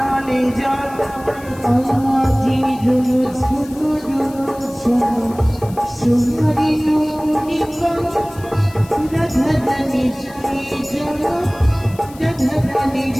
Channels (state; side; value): noise; left; hiss, 22 dB below the sound